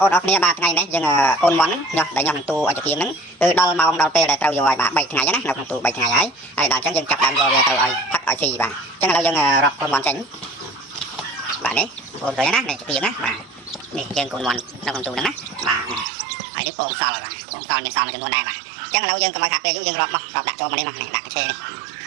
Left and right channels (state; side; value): drops out; left; at 16.1 s